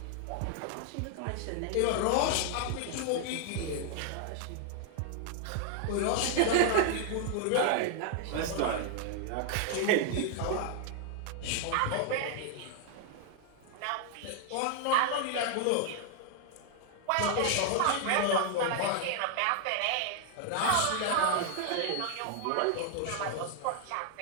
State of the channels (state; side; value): different; both; correlation 0.00